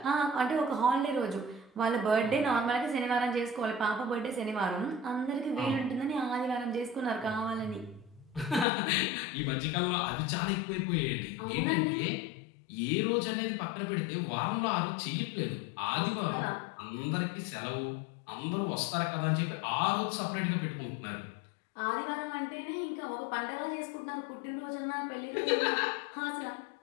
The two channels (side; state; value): right; drops out; at 8.7 s